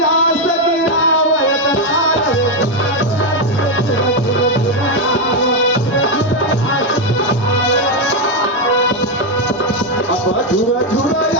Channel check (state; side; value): normal; both; correlation 0.05